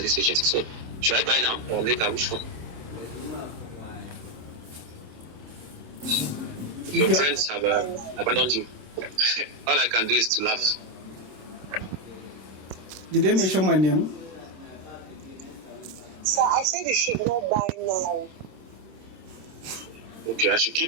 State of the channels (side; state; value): left; late; 26 ms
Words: this agency. So, should I buy now or later? Which one? Your friends have abandoned you. All I can do is to laugh. Did they mention my name? Sir, I said you should not buy now. Okay, I should